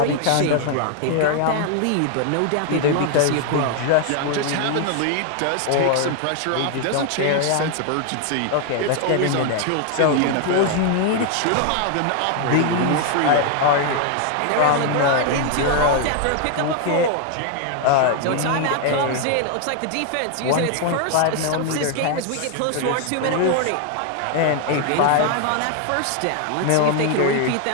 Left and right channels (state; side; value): different; both; correlation 0.00